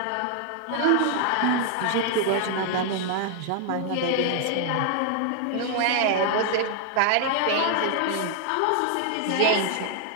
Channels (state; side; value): different; both; correlation 0.00